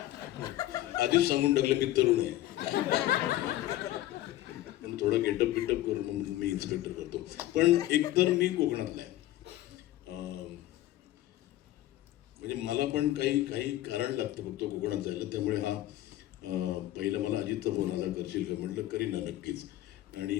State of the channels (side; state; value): right; quieter; 14.7 dB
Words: आधीच सांगून टाकलं मी तरुण आहे, पण थोडा गेटअप करून मी इन्स्पेक्टर करतो. पण एकतर मी कोकणातला आहे. म्हणजे मला पण काही कारण लागतं फक्त कोकणात जायला. त्यामुळे हा पहिला मला अजितचा फोन आला, करशील का? म्हटलं करीन ना, नक्कीच. आणि